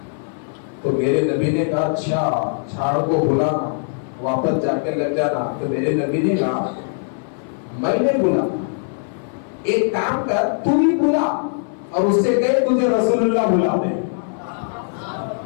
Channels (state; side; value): silent; right; 59 dB below the other